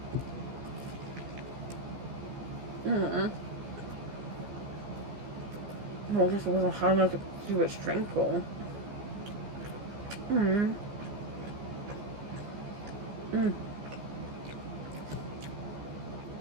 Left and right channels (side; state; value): left; late; 15 ms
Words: What? Well, this wasn't hard enough to keep it strengthful.